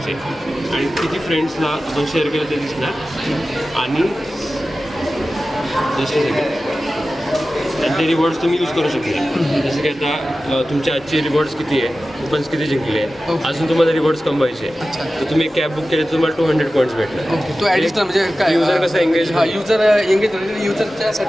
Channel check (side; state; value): both; normal; correlation 0.95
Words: आणि किती फ्रेंड्सला आपण शेअर केलं ते दिसणार. आणि ते रिवॉर्ड्स तुम्ही यूज करू शकता. जसं की आता तुमचे आजचे रिवॉर्ड्स किती आहे, कुपन्स किती जिंकले आहे, अजून तुम्हाला रिवॉर्ड्स कमवायचे. तर तुम्ही एक कॅब बुक केली तर तुम्हाला 200 पॉईंट्स भेटणार. ओके. तो ॲडिशनल म्हणजे काय युजर कसं एंगेज.